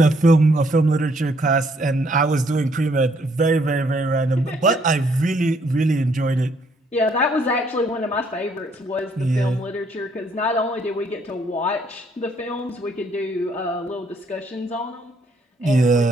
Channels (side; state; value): both; normal; correlation 0.68